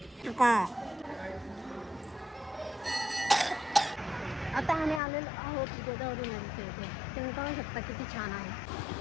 आता आम्ही आलेलो आहोत गोदावरी नदीच्या इथे. तुम्ही पाहू शकता किती छान आहे.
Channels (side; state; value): right; drops out; at 5.0 s